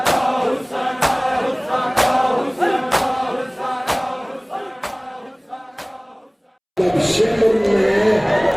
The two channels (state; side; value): identical; both; correlation 1.00